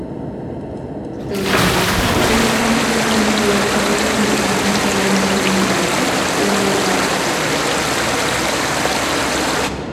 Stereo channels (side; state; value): both; identical; correlation 1.00